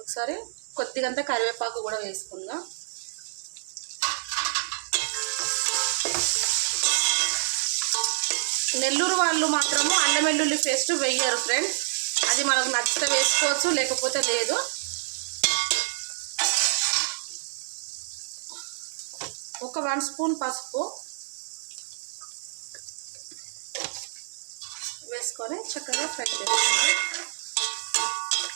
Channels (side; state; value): left; silent; 60 dB below the other